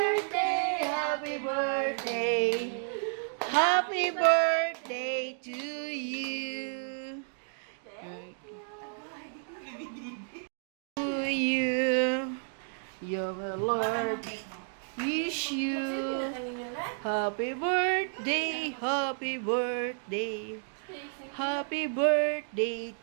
happy birthday. Happy birthday to you. To you. Your Lord wish you happy birthday, happy birthday. Happy birthday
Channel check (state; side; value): silent; left; digital silence